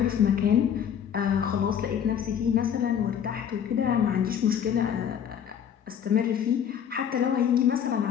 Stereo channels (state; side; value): quieter; right; 8.6 dB